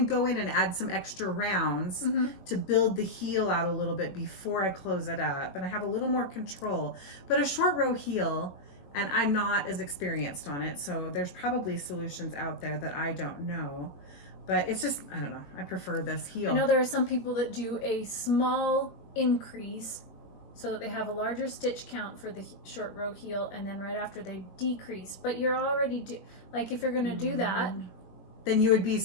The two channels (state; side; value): late; right; 21 ms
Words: go in and add some extra rounds to build the heel out a little bit before I close it up, and I have a little more control. But a short row heel, and I'm not as experienced on it, so there's probably solutions out there that I don't know. But it's just, I don't know, I prefer this heel. I know there are some people that do a small increase so that they have a larger stitch count for the short row heel, and then right after they decrease. But you're already like if you're going to do that, then you would be